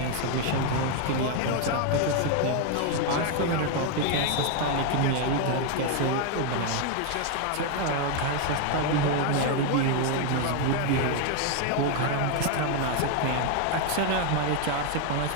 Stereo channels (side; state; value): both; different; correlation 0.01